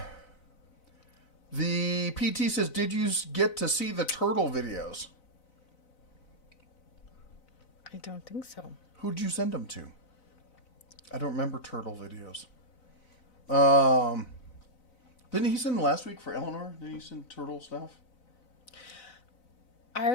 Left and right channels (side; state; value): right; late; 4.0 ms